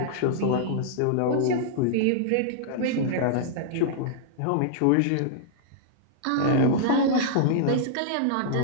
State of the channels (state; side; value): different; both; correlation -0.02